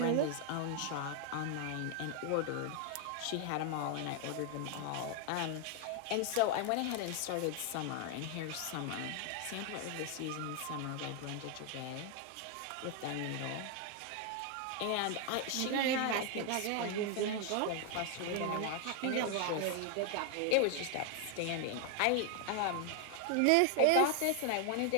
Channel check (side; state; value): both; different; correlation 0.00